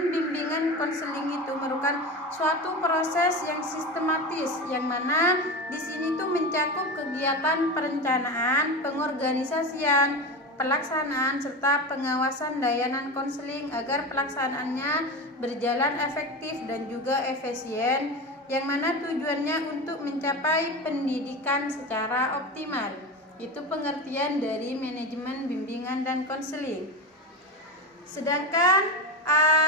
bimbingan konseling itu merupakan suatu proses yang sistematis, yang mana di sini tuh mencakup kegiatan perencanaan, pengorganisasian, pelaksanaan serta pengawasan layanan konseling agar pelaksanaannya berjalan efektif dan juga efisien, yang mana tujuannya untuk mencapai pendidikan secara optimal. Itu pengertian dari manajemen bimbingan dan konseling. Sedangkan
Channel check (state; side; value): normal; both; correlation 0.23